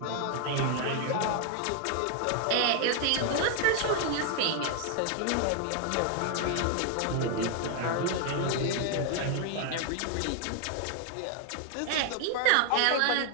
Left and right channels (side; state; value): both; different; correlation 0.00